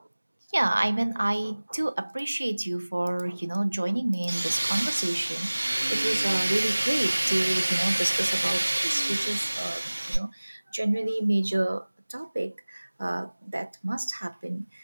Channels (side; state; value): both; inverted; correlation -1.00